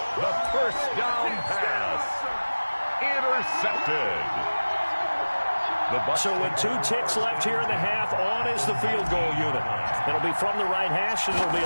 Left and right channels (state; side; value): inverted; both; correlation -1.00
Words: The 1st down pass. Intercepted. So with 2 ticks left here in the half, on is the field goal unit. It'll be from the right hash, and it'll be